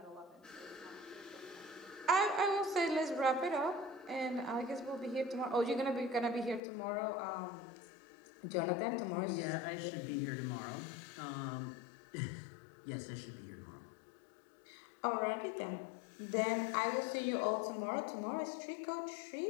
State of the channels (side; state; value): right; drops out; at 6.6 s